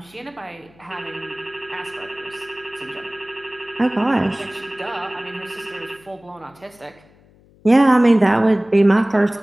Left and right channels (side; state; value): left; noise; hum, 29 dB below the sound